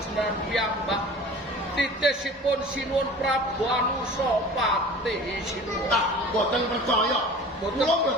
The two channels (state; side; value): normal; both; correlation 0.41